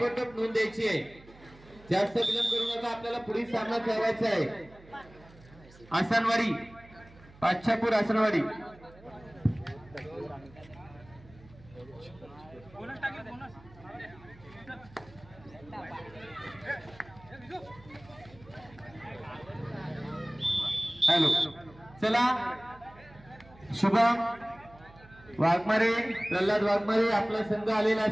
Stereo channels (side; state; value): right; noise; hum, 23 dB below the sound